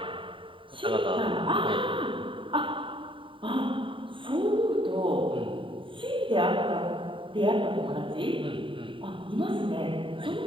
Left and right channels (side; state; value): left; late; 0.25 ms